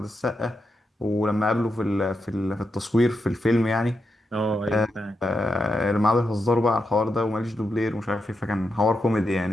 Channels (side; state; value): both; normal; correlation 0.86